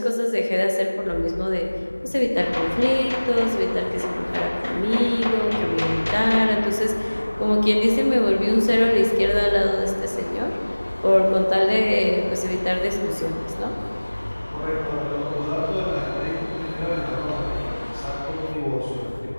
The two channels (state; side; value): inverted; both; correlation -1.00